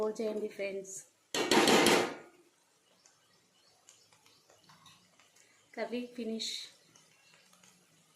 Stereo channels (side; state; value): both; identical; correlation 1.00